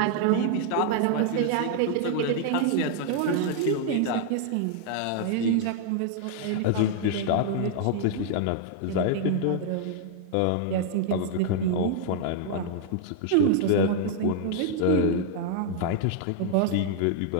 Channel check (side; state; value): both; different; correlation 0.00